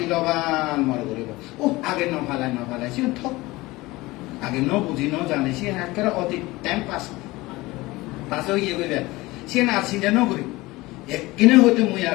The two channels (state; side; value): quieter; right; 20.5 dB